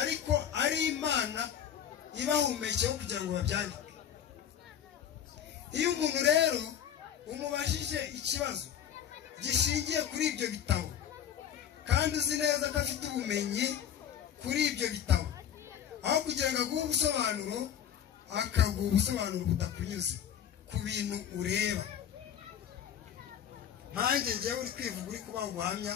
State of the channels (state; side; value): quieter; right; 9.4 dB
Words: ari Imana ibahumekeho kugira ngo babyandike iyo umuntu rero umubajije ikibazo gishingiye kuri ibyo bitabo kandi uzi neza ko afite ubumenyi kuri ibyo bitabo aho kugira ngo aguhe ubusobanuro akaguha ubusobanuro butakunyuze ku bintu ureba nkanjye njyewe uri kwivuga uri kubaha ubuhamya